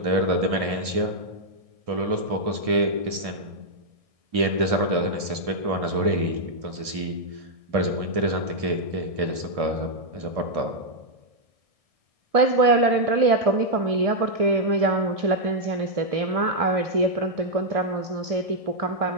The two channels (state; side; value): late; left; 1.6 ms